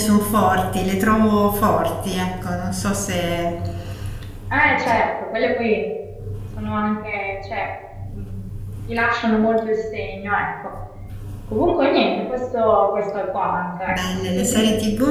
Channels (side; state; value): both; identical; correlation 1.00